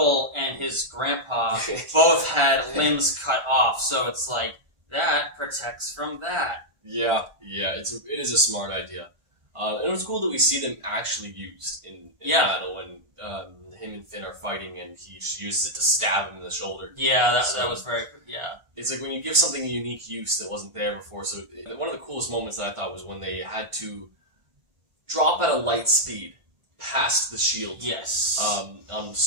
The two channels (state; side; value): late; left; 1.5 ms